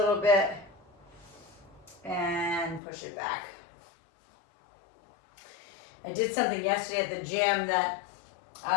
bit and push it back. I did something yesterday at the gym that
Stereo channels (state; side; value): drops out; right; at 2.8 s